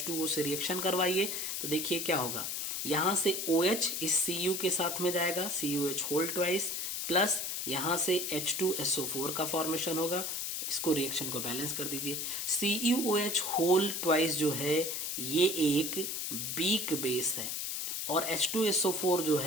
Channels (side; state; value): left; noise; hiss, 2 dB below the sound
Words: से रिएक्शन करवाइए, तो देखिए क्या होगा। यहां से OH इस Cu के साथ में जाएगा, CuH होल ट्वाइस, प्लस यहां से H2SO4 का फॉर्मेशन होगा। इसको रिएक्शन को बैलेंस कर दीजिए। CuOH होल ट्वाइस जो है ये एक वीक बेस है, और H2SO4 जो